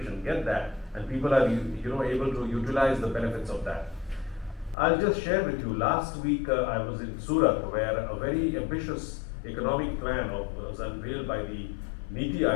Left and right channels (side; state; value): right; drops out; at 4.8 s